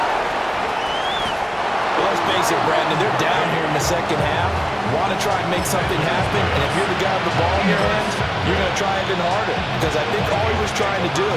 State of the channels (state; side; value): identical; both; correlation 1.00